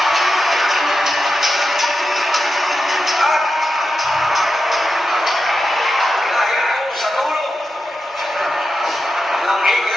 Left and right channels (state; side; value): normal; both; correlation 0.89